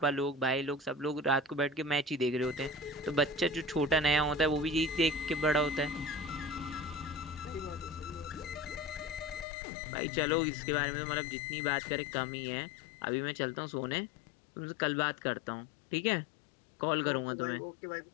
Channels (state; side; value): drops out; right; at 9.5 s